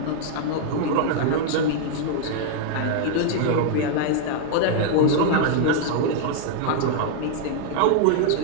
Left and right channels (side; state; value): both; different; correlation 0.00